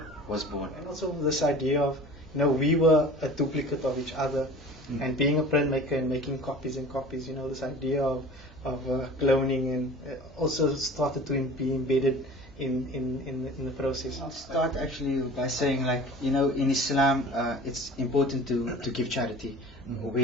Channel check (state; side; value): normal; both; correlation 0.41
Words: was born. And also this idea of, we were a duplicate of each other, and being a printmaker and making copies and copies, this idea of cloning and also started to be embedded in the process. I'll start actually by saying, in Islam, it's important to give charity.